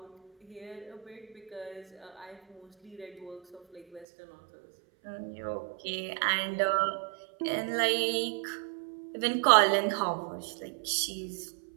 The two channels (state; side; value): drops out; left; at 4.0 s